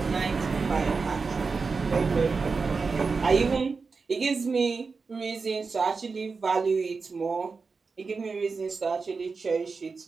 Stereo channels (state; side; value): quieter; left; 4.6 dB